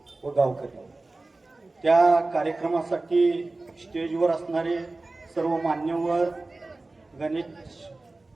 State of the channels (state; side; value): quieter; left; 3.2 dB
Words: व गावकरी. त्या कार्यक्रमासाठी स्टेजवर असणारे सर्व मान्यवर, गणेश